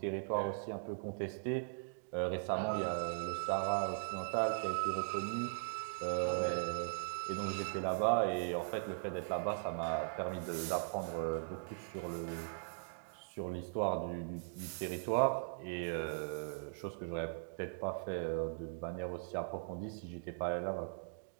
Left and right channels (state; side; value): silent; left; digital silence